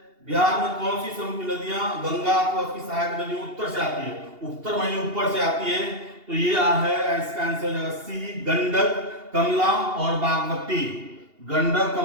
बिहार में कौन सी समुद्री नदियां गंगा अथवा उसकी सहायक नदियों उत्तर से आती है, उत्तर माने ऊपर से आती है, तो ये है इसका आंसर हो जाएगा सी, गंडक, कमला और बागमती, गंडक,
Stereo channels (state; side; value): late; left; 2.8 ms